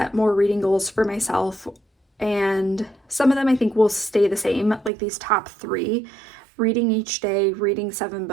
more reading goals for myself, and some of them I think will stay the same, like these top 3. Reading each day, reading 7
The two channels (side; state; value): left; drops out; at 4.9 s